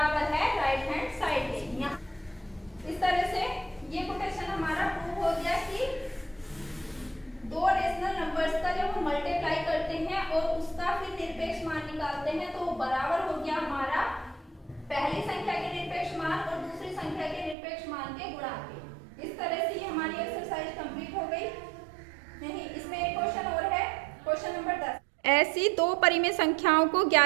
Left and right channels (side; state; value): left; drops out; at 17.6 s